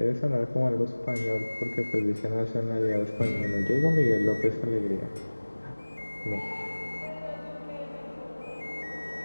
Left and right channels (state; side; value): inverted; both; correlation -1.00